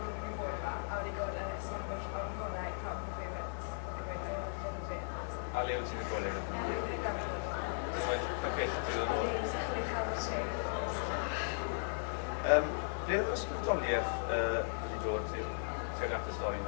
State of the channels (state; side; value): silent; right; 53 dB below the other